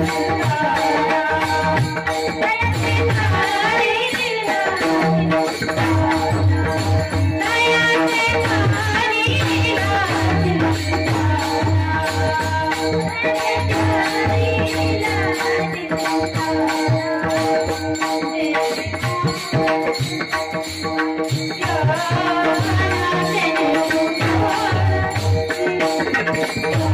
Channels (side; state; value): both; identical; correlation 1.00